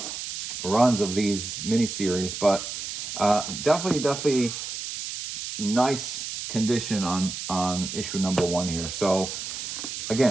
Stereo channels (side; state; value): right; noise; hiss, 6 dB below the sound